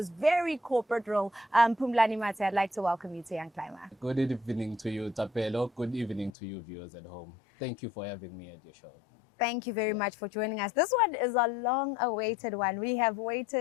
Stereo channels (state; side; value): drops out; right; at 6.3 s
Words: very corporate role. Phumlani Matse, I'd like to welcome you to Young Climber. Good evening to you, Tapelo. Good evening to you, viewers at home. Thank you for having me at your show. Thank you very much for joining us. This one is a long-awaited one. We have